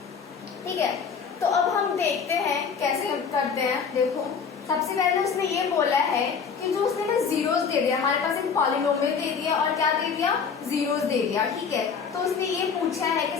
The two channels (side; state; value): right; quieter; 6.1 dB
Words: ठीक है। तो अब हम देखते हैं कैसे करते हैं। देखो, सबसे पहले उसने ये बोला है कि जो उसने ना जीरोस दे दिया, हमारे पास एक पॉलिनोमियल दे दिया और क्या दे दिया, जीरोस दे दिया, ठीक है। तो उसने ये पूछा है कि